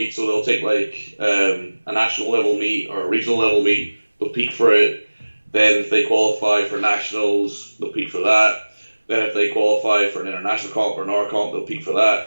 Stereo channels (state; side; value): inverted; both; correlation -1.00